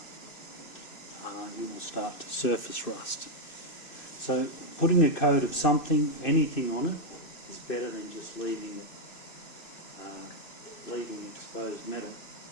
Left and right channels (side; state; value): right; late; 2.6 ms